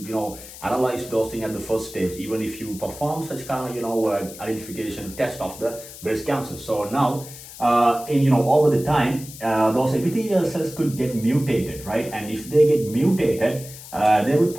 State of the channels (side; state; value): left; noise; hiss, 15 dB below the sound